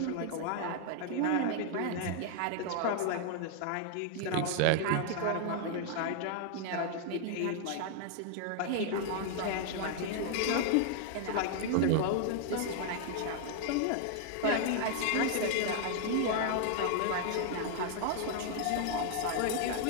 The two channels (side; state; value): both; different; correlation 0.00